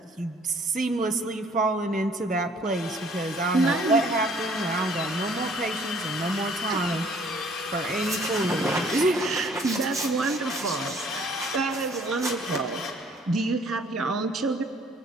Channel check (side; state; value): both; normal; correlation 0.58